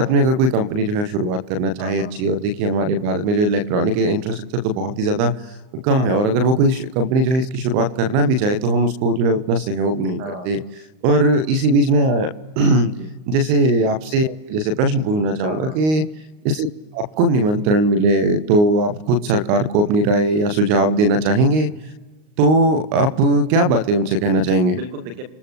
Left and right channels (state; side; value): late; left; 39 ms